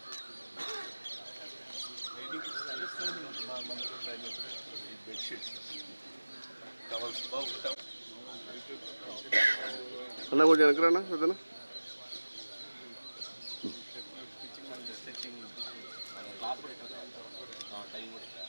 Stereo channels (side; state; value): both; inverted; correlation -1.00